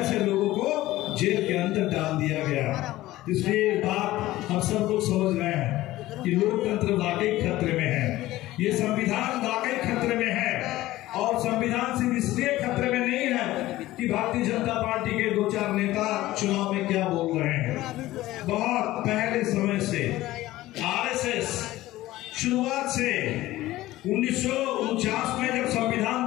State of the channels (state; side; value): quieter; right; 16.5 dB